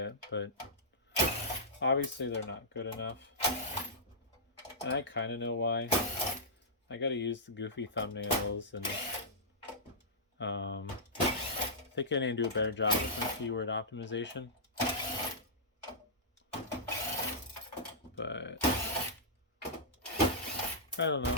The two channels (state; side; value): normal; both; correlation -0.14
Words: but obviously they're not good enough. And I kind of know why. I gotta use the goofy thumbnails, and I think I need to do a better job with my keyword optimization. But I don't